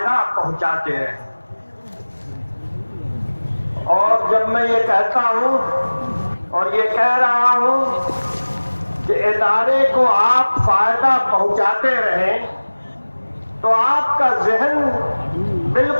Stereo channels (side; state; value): both; inverted; correlation -1.00